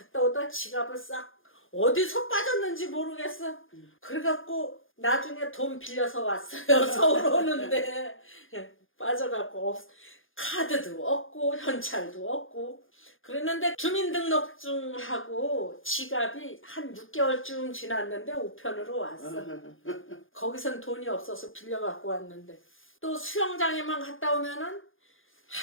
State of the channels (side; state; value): right; late; 0.59 ms